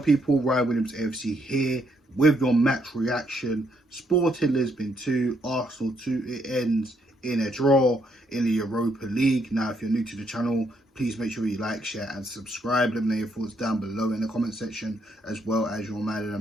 people? Ryan Williams AFC here with your match reaction. Sporting Lisbon 2, Arsenal 2. It ends in a draw in the Europa League. Now, if you're new to the channel, please make sure you like, share and subscribe. Let me know your thoughts down below in the comment section, as well as your man of the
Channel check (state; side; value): normal; both; correlation 0.74